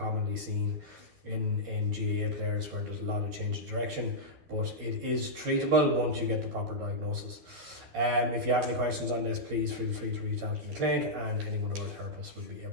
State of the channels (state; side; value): late; left; 12 ms